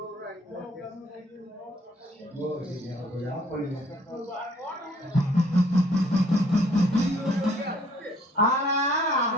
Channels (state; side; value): normal; both; correlation 0.60